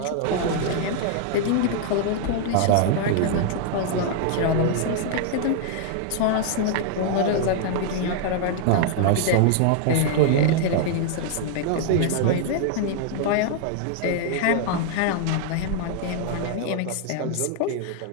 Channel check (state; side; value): different; both; correlation -0.01